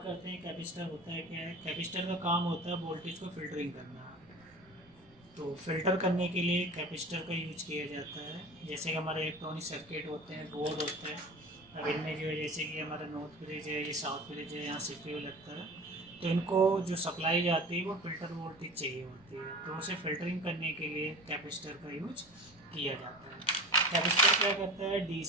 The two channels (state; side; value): noise; right; rumble, 28 dB below the sound